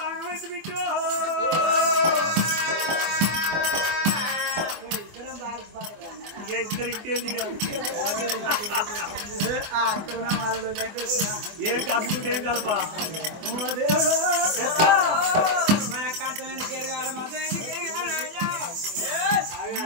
ఆగమైతే బిట్టు ఇద్దరు ఇంకేంది ఏం కలుపుకుంటే ఏం కలపా మన కంచం ఎందుకు ఎరగాలి మతం ఎందుకు ఎరగాలి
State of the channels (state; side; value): late; left; 24 ms